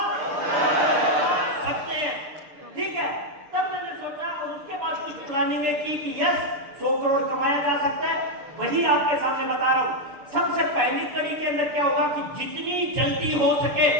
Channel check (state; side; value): late; left; 6.7 ms